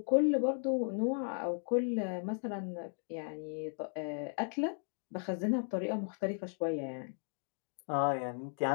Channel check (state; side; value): silent; right; 54 dB below the other